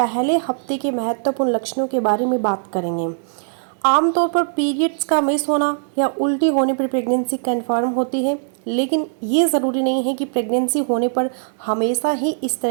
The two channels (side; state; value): left; silent; 61 dB below the other